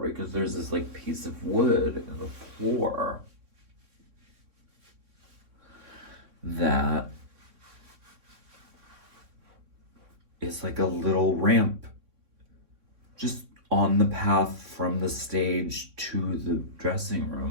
because there's this like piece of wood in the floor. that is like a little ramp just on the path from the stage to the dressing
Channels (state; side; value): late; left; 3.6 ms